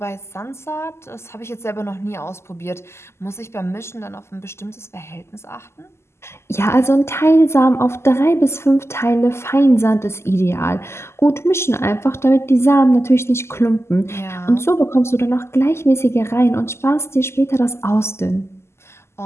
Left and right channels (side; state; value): right; late; 0.13 ms